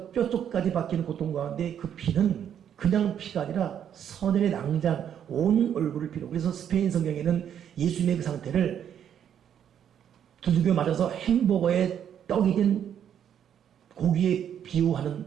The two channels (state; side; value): quieter; left; 9.2 dB